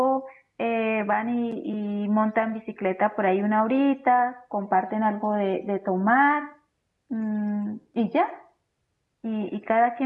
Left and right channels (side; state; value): both; identical; correlation 1.00